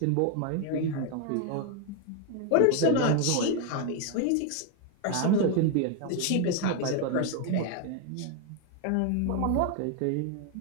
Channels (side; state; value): both; different; correlation 0.01